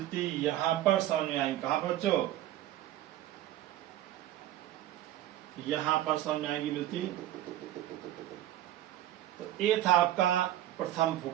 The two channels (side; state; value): left; quieter; 13.3 dB